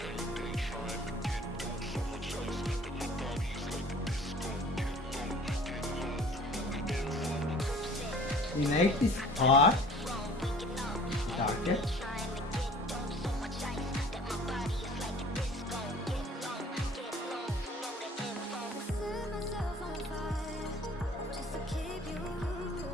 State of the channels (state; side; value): normal; both; correlation 0.49